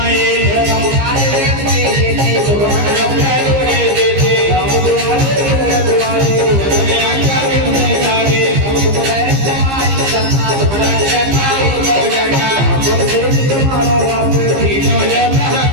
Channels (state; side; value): late; left; 15 ms